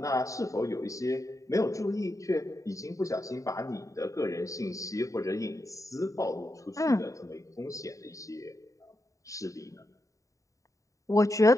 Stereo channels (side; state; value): right; late; 0.16 ms